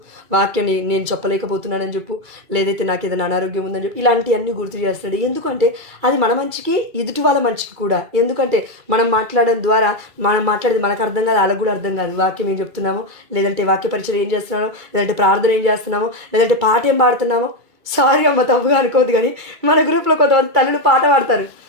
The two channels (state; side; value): late; left; 2.3 ms